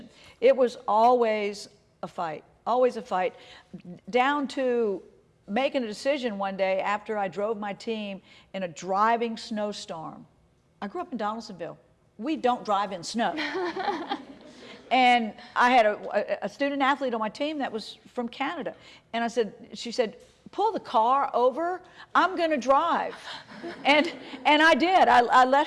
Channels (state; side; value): identical; both; correlation 1.00